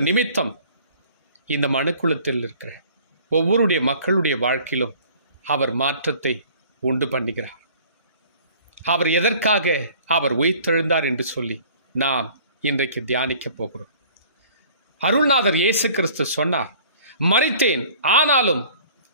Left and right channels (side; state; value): both; inverted; correlation -0.51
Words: நிமித்தம் இந்த மனுக்குலத்தில் இருக்கிற ஒவ்வொருடைய மக்களுடைய வாழ்க்கையிலும் அவர் மாற்றத்தை உண்டு பண்ணுகிறார். அவர் எதற்காக அவர் உயிர்த்தெழுந்தார் என்று சொல்லி நாம் இன்றைக்கு தியானிக்க போகிறோம். அருள்நாதர் இயேசு கிறிஸ்து சொன்னார், மரித்தேன், ஆனாலும்